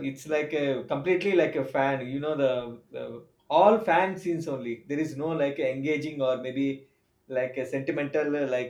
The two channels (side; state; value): both; identical; correlation 1.00